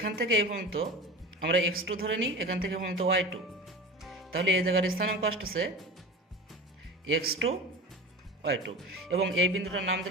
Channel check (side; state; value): both; normal; correlation 0.32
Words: থেকে এই পর্যন্ত আমরা x2 ধরে নিই, এখান থেকে পর্যন্ত y2, তাহলে এই জায়গার স্থানাঙ্ক আসতেছে x2 y2 এবং এই বিন্দুটার নাম